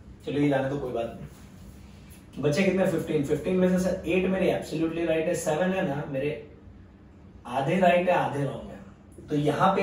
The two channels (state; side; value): identical; both; correlation 1.00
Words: चलो ये जाने तो कोई बात नहीं। बचे कितने? 15 में से सर 8 मेरे एब्सोल्युटली राइट है, 7 है ना मेरे आधे राइट है आधे रॉन्ग है। तो यहां